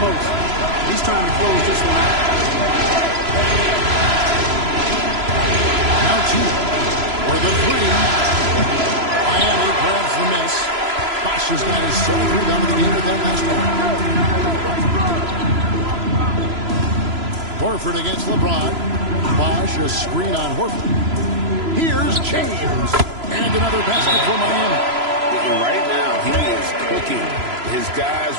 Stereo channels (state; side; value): late; left; 3.0 ms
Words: most. He's trying to close this one out. Now 2 for the 3. Miami grabs the miss. 5 Bosh has got his 7th rebound of the game with that last one. Horford against LeBron. Bosh, a screen on Horford. Here's James. And another basket for Miami. And right now, he is cooking. His guys